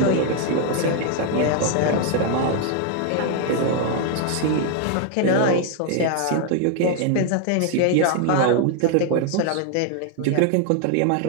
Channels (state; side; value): different; both; correlation 0.00